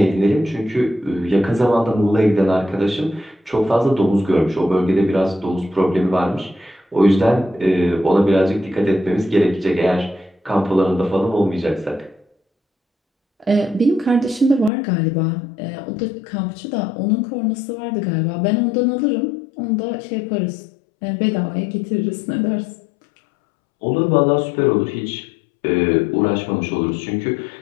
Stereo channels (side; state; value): right; drops out; at 14.7 s